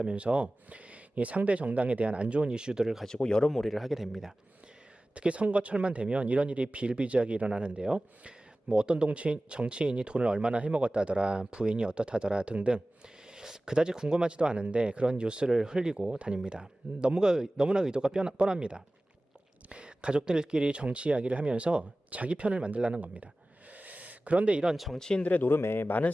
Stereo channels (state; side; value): normal; both; correlation 0.97